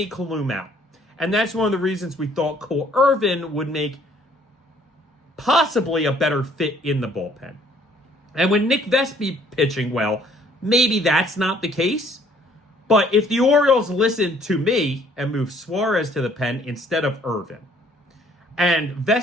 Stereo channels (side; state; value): both; normal; correlation 0.60